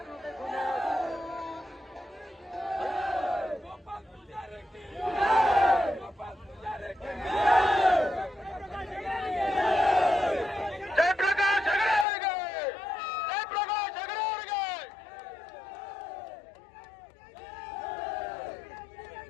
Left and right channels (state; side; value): drops out; right; at 12.1 s